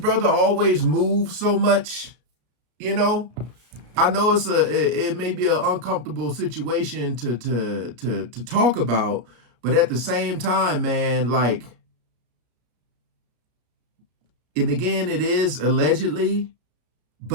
always moved so much? I know it may be an uncomfortable situation to talk about, But at the same time, man, like, and again, it is allegedly,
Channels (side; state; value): left; late; 33 ms